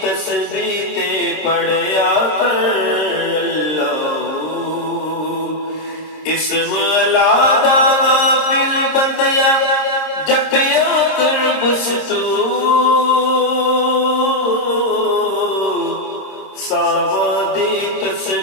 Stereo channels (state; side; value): late; right; 26 ms